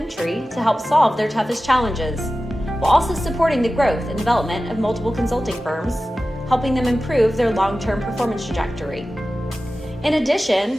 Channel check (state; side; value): normal; both; correlation 0.95